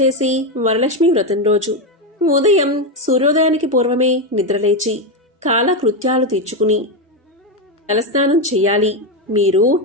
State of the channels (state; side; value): normal; both; correlation 0.09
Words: వరలక్ష్మి వ్రతం రోజు ఉదయం సూర్యోదయానికి పూర్వమే నిద్రలేచి కాలకృత్యాలు తీర్చుకుని తలస్నానం చెయ్యాలి. మీరు